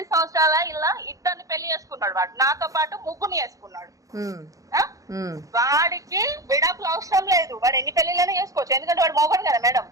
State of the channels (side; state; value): left; late; 0.16 ms